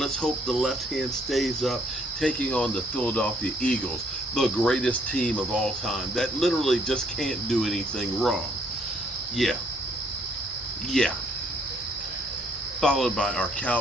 hope the left hand stays up, taking on the Philadelphia Eagles, the greatest team of all time that literally just can't do anything wrong. Yeah. Followed by our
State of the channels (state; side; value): normal; both; correlation 0.66